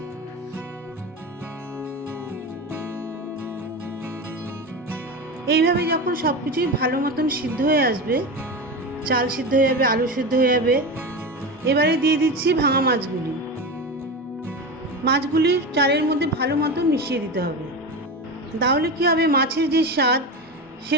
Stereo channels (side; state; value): both; normal; correlation 0.23